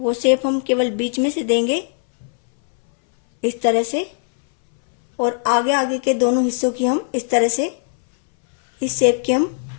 शेप हम केवल बीच में से देंगे इस तरह से। और आगे आगे के दोनों हिस्सों की हम इस तरह से इस शेप की हम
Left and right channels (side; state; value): right; silent; 62 dB below the other